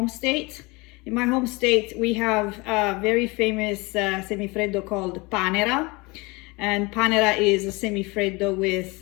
state. In my home state, we have a very famous semifreddo called panera. And panera is a semifreddo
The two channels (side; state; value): right; quieter; 25.5 dB